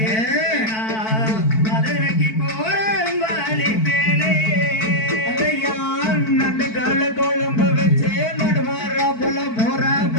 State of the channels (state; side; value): late; right; 4.5 ms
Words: குழம்பு வச்சு நடுவார போல போற